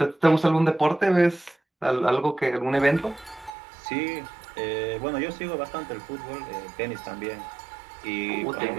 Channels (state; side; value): drops out; left; at 3.5 s